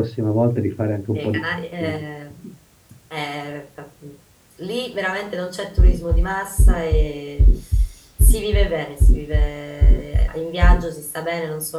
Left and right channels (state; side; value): identical; both; correlation 1.00